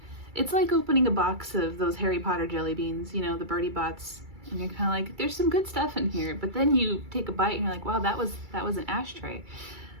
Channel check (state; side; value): late; left; 2.3 ms